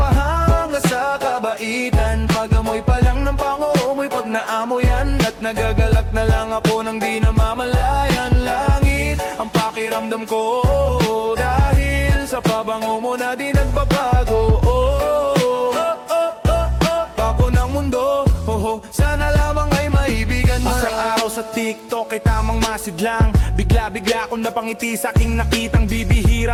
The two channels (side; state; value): both; identical; correlation 1.00